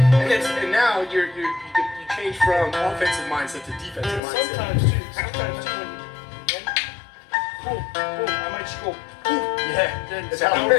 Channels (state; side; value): drops out; right; at 4.2 s